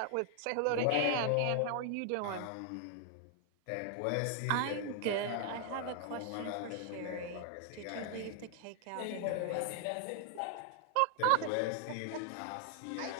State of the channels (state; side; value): different; both; correlation 0.00